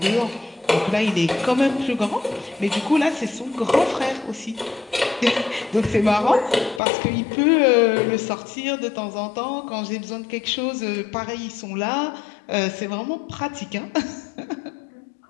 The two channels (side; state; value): right; drops out; at 6.8 s